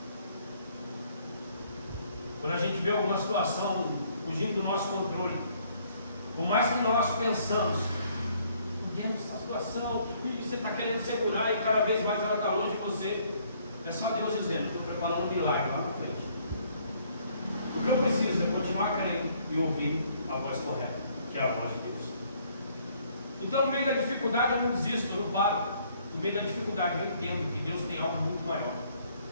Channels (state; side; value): inverted; both; correlation -0.64